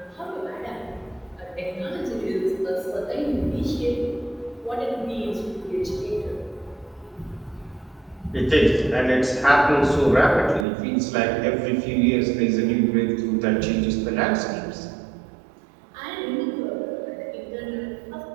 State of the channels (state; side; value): drops out; left; at 10.7 s